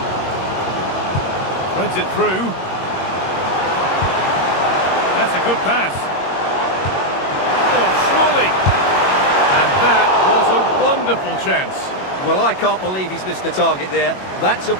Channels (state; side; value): late; right; 21 ms